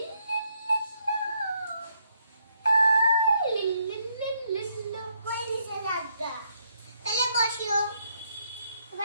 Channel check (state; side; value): inverted; both; correlation -0.74